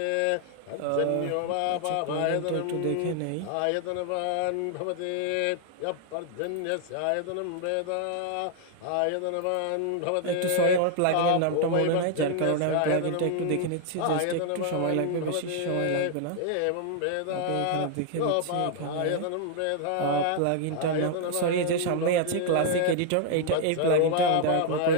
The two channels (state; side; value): different; both; correlation 0.00